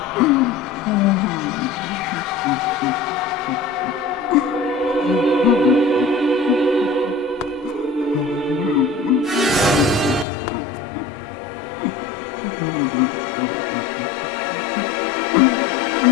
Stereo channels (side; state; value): right; drops out; at 10.2 s